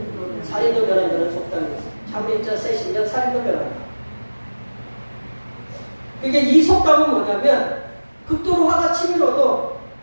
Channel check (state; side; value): inverted; both; correlation -1.00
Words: 살인도 면한다는 속담이 있어요. 참물인자 셋이면 살인도 면한다. 그게 이 속담은 뭐냐면 극도로 화가 치밀어도